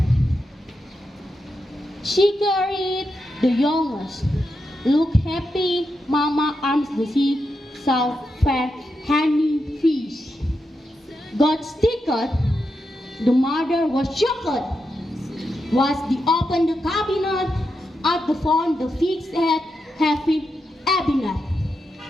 She carried the youngest. Look happy, Mama arms the sea, saw fair honey fish. Got stickered. The mother was shocked. Was the open the cabinet at the phone the fixed head having cabinet.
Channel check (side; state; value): both; normal; correlation 0.86